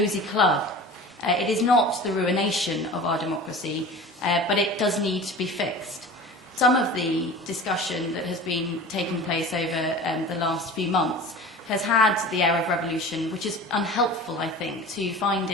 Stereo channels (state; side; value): normal; both; correlation 0.37